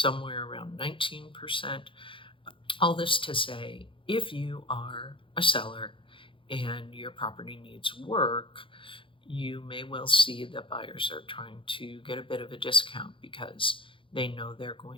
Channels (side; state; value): right; late; 0.25 ms